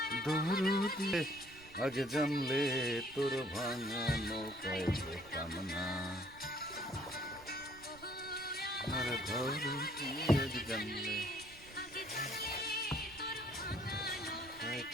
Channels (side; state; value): right; noise; rumble, 21 dB below the sound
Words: দরুদি আগে জানলে তোর ভাঙা নৌকায় যেতাম না। আর দরুদি আগে জানলে